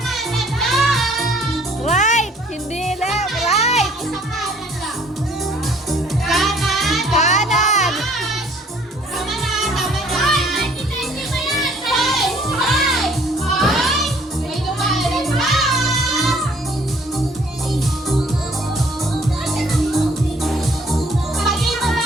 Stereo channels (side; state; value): both; normal; correlation 0.59